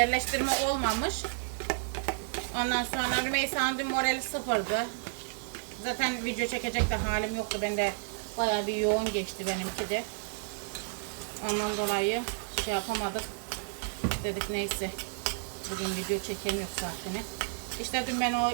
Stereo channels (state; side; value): silent; left; 57 dB below the other